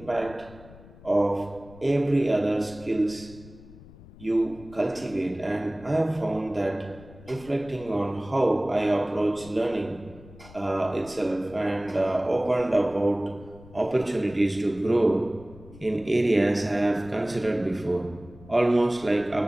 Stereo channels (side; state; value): left; noise; rumble, 20 dB below the sound